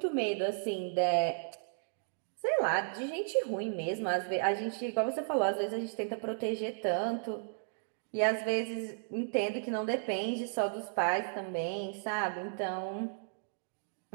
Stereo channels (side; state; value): left; silent; digital silence